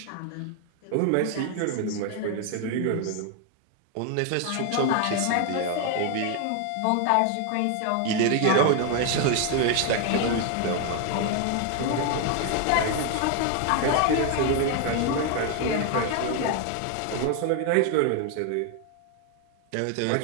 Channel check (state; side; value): different; both; correlation 0.00